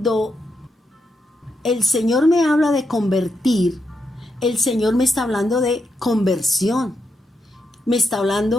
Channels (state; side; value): normal; both; correlation 0.83